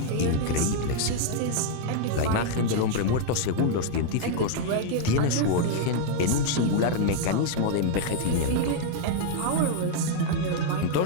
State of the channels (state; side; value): different; both; correlation 0.00